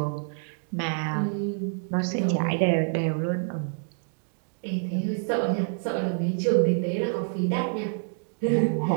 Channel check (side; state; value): left; silent; digital silence